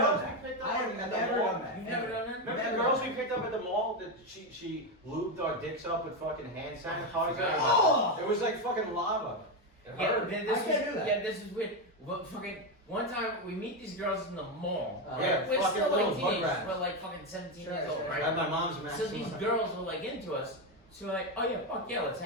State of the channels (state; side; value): normal; both; correlation 0.09